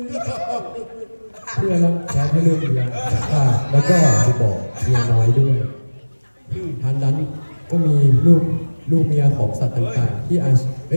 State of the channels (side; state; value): both; inverted; correlation -1.00